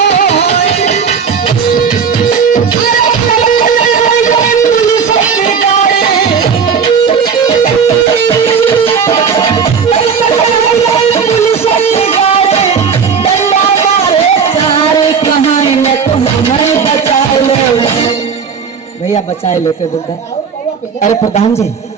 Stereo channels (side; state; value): left; quieter; 6.3 dB